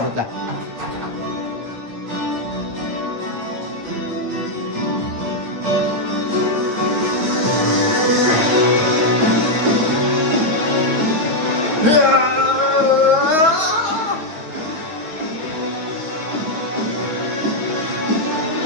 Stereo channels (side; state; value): left; late; 9.5 ms